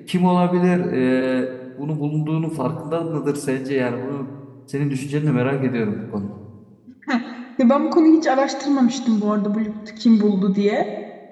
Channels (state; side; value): identical; both; correlation 1.00